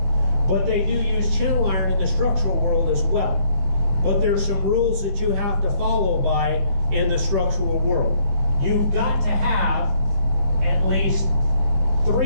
But they do use channel iron in the structural world as well. But there's some rules that you have to follow by in the structural world. You've got to have at least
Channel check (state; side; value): late; left; 15 ms